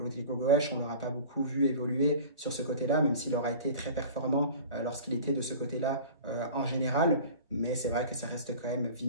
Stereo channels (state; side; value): inverted; both; correlation -0.40